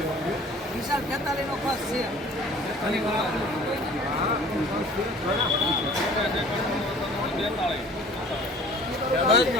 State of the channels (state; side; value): normal; both; correlation 0.48